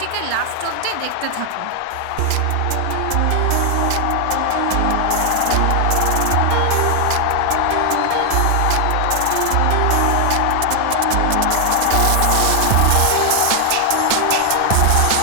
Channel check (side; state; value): both; different; correlation 0.00